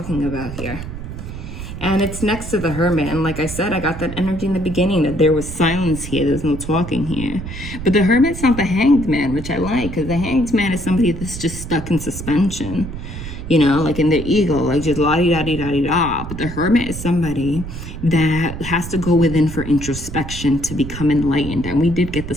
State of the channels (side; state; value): right; noise; rumble, 9 dB below the sound